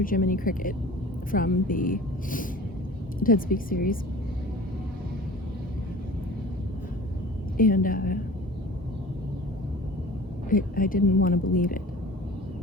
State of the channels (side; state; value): both; normal; correlation 0.42